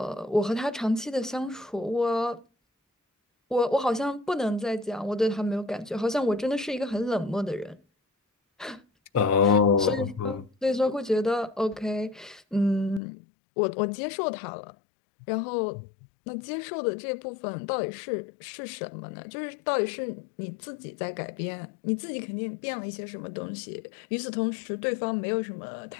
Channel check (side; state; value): right; drops out; at 13.0 s